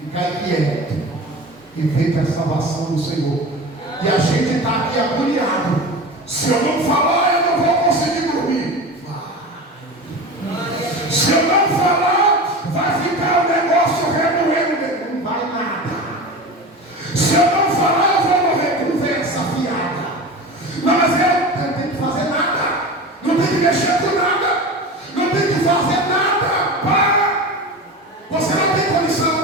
quieto e veja a salvação do Senhor. E a gente está aqui agoniado. Se eu não falar, eu não vou conseguir dormir. Vai. Se eu não falar, vai ficar o negócio remoendo. Não vai nada. Se eu não falar, eu vou morrer. Conversa fiada. Não, mas eu não tenho que fazer nada. Não tem que mexer com nada. Não tem que fazer nada. Para. Você não tem condição.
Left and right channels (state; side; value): normal; both; correlation 0.30